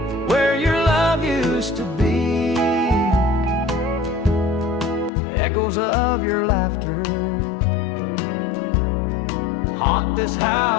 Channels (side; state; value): right; drops out; at 5.1 s